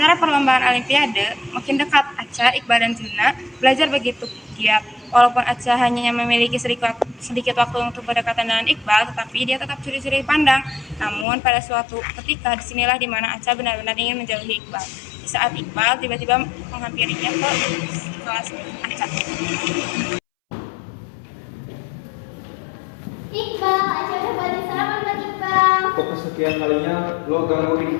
perlombaan Olimpiade makin dekat. Aca, Iqbal, dan Zina belajar begitu giat. Walaupun Aca hanya memiliki sedikit waktu untuk berdekatan dengan Iqbal, tetapi dia tetap curi-curi pandang. Namun pada suatu ketika disinilah dimana Aca benar-benar ingin menjauhi Iqbal. Di saat Iqbal tiba-tiba menghampirinya ke kelas Aca. Iqbal, Aca udah buatin sarapan buat Iqbal. Untuk kesekian kalinya lo gangguin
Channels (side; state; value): right; drops out; at 11.2 s